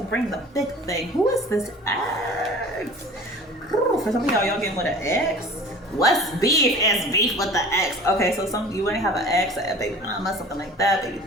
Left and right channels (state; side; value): normal; both; correlation 0.42